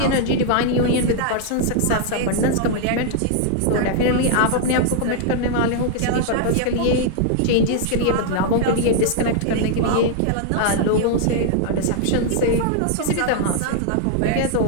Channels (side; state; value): both; different; correlation -0.01